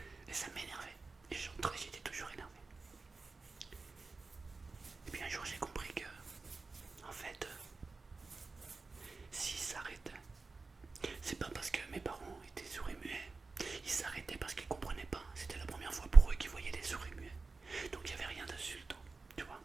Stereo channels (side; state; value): left; quieter; 4.0 dB